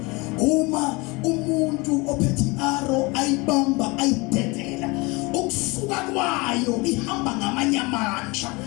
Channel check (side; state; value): right; quieter; 25.6 dB